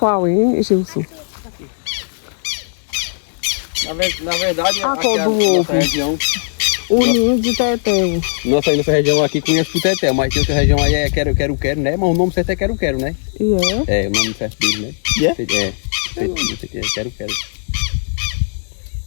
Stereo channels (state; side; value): silent; right; 68 dB below the other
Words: hein, Gilson? Na verdade, A cor do ovo. O ninho de tetel. Nossa região aqui conhece o tetel, mas tem outra região aí é quero, né? Mas o nome certo é quero, né? E é? É, o nome certo dele, né? Quero.